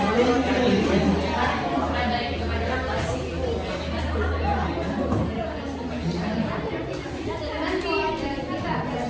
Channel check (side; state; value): both; identical; correlation 1.00